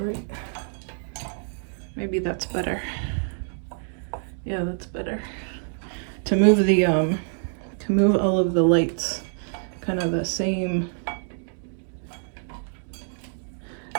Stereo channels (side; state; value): left; silent; 61 dB below the other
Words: right. Maybe that's better. Yeah, that's better. To move the, to move all of the lights kind of the same.